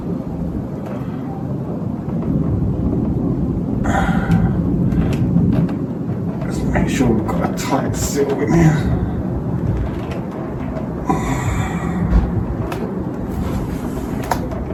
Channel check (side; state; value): both; identical; correlation 1.00